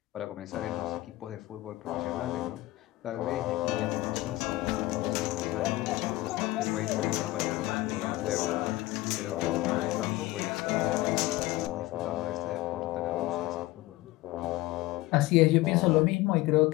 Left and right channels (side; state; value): right; quieter; 18.4 dB